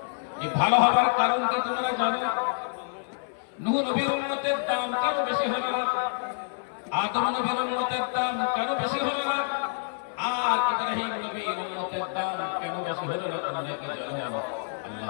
এই ভালো হবার কারণ কি তোমরা জানো? নূহ নবীর উম্মতের দাম কেন বেশি হলো না? আদম নবীর উম্মতের দাম কেন বেশি হলো না? আর ইব্রাহিম নবীর উম্মতের দাম কেন বেশি হলো না? তোমরা কি জানো?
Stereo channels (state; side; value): silent; right; 60 dB below the other